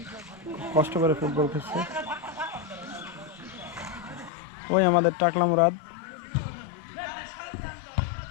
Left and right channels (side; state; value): right; drops out; at 4.3 s